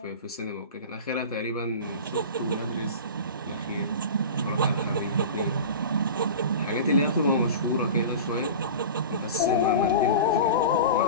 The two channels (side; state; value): both; inverted; correlation -0.33